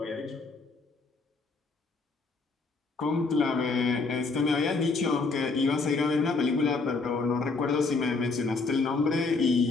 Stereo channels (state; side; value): quieter; right; 4.0 dB